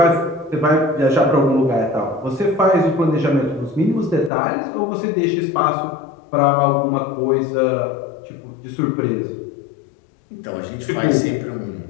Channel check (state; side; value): drops out; right; at 4.3 s